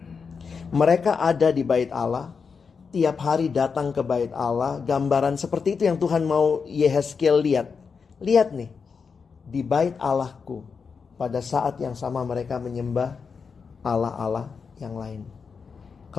Mereka ada di bait Allah. Tiap hari datang ke bait Allah. Gambaran seperti itu yang Tuhan mau Yehezkiel lihat. Lihat nih. Di bait Allahku. Pada saat yang sama mereka menyembah Allah-Allah yang lain.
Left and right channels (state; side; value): quieter; right; 5.5 dB